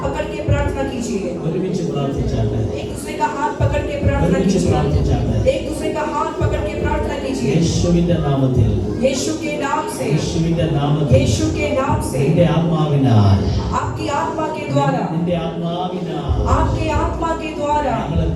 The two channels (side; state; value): both; identical; correlation 1.00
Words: पकड़ के प्रार्थना कीजिए ഒരുമിച്ച് പ്രാർത്ഥിച്ചാട്ടെ. एक दूसरे का हाथ पकड़ के प्रार्थना ഒരുമിച്ച് कीजिए പ്രാർത്ഥിച്ചാട്ടെ. एक दूसरे का हाथ पकड़ के प्रार्थना कीजिए യേശുവിന്റെ നാമത്തിൽ, यीशु के नाम से യേശുവിന്റെ നാമത്തിൽ यीशु के नाम से നിന്റെ ആത്മാവിനാൽ, आपकी आत्मा के द्वारा നിന്റെ ആത്മാവിനാൽ आपके आत्मा के द्वारा ഞങ്ങളെ